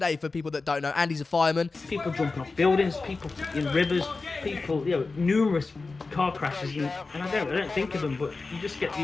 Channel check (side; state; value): right; quieter; 3.9 dB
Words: for people that don't know. Andy's a fireman. People jumping off buildings, people in rivers, people, numerous car crashes, and I don't think of them, but you just get